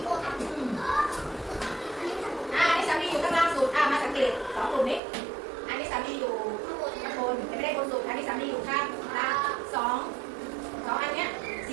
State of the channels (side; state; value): left; drops out; at 5.0 s